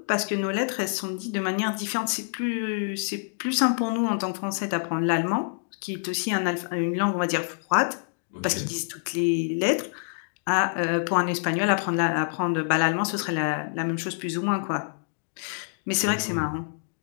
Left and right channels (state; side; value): silent; right; digital silence